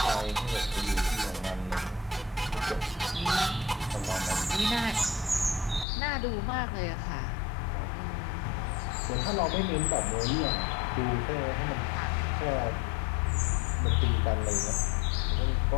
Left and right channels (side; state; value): right; drops out; at 5.9 s